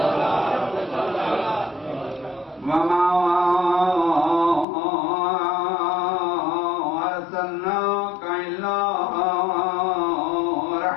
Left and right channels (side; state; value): right; drops out; at 4.7 s